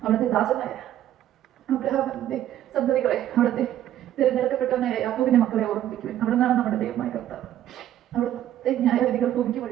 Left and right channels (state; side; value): quieter; left; 12.0 dB